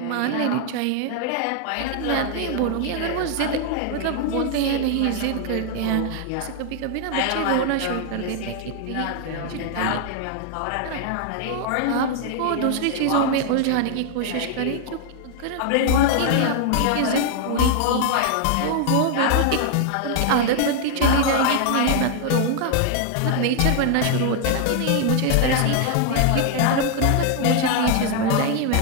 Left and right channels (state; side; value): different; both; correlation 0.00